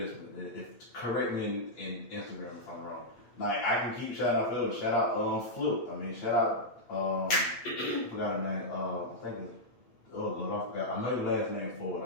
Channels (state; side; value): late; right; 8.5 ms